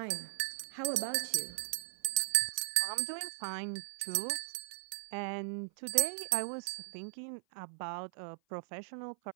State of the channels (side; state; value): left; silent; 53 dB below the other